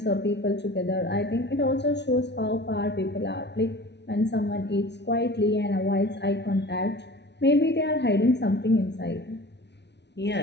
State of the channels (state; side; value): late; right; 0.50 ms